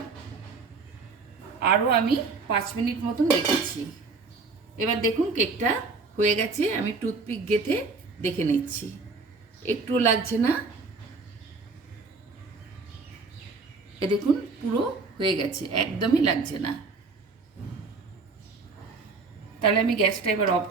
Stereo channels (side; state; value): left; quieter; 4.2 dB